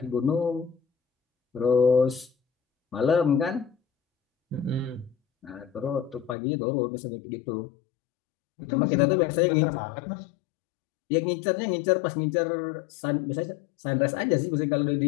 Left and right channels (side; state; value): right; drops out; at 6.4 s